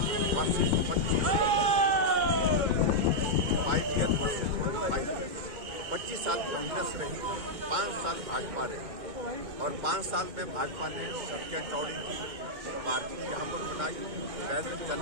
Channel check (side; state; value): left; late; 2.1 ms